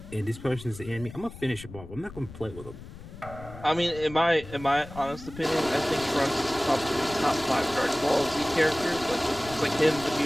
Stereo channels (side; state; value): left; noise; rumble, 15 dB below the sound